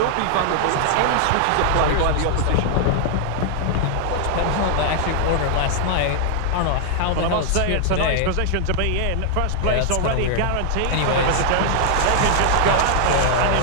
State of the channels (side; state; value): both; different; correlation 0.00